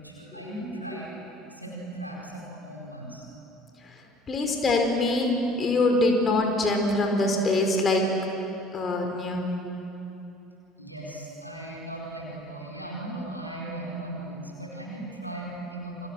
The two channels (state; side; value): normal; both; correlation 0.51